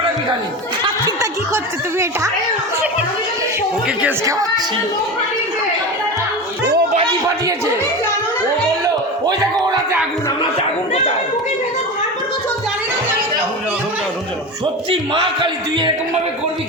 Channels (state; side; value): normal; both; correlation 0.25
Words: খালি চিন্তা কি করছো তুমি এটা ওকে কেস খাওয়াচ্ছি ও বাজি ফাটিয়েছে ও বললো ওই দেখো ওরাতে আগুন আমরাতে আগুন কোথায় সত্যি মা কালী তুই এরকম ভাবে করবি